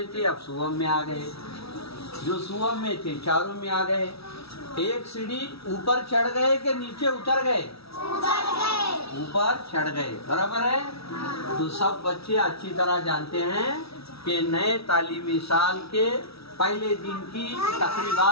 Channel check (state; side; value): late; right; 0.77 ms